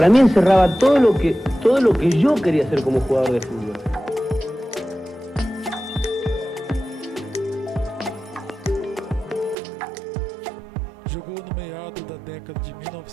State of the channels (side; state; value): left; drops out; at 9.6 s